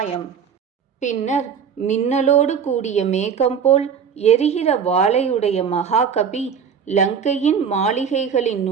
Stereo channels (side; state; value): left; quieter; 7.1 dB